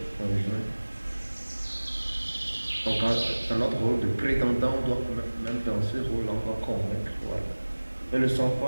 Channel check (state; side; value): inverted; both; correlation -1.00